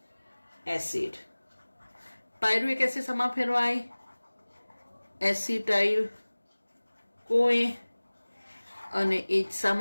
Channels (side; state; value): both; inverted; correlation -1.00